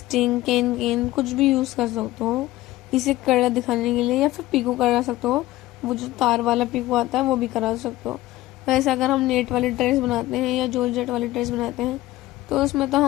कैन कुछ भी यूज़ कर सकते हो इसे कड़ा दिखाने के लिए, या फिर पीको करा सकते हो। वो जो तार वाला पीको आता है वो भी करा सकते हो। वैसे अगर हम नेट वाली ड्रेस बनाते हैं या जॉर्जेट वाली ड्रेस बनाते हैं तो उसमें तो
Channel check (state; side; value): quieter; right; 16.7 dB